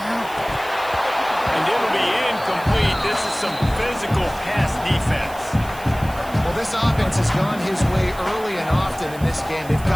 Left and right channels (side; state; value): right; noise; hiss, 19 dB below the sound